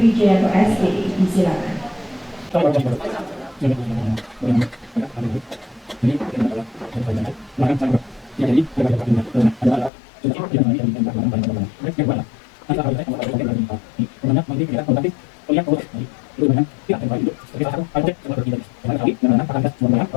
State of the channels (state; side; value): drops out; right; at 9.9 s